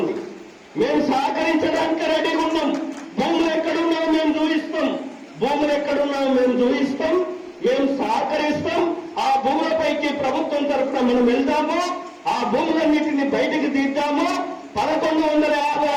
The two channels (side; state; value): both; identical; correlation 1.00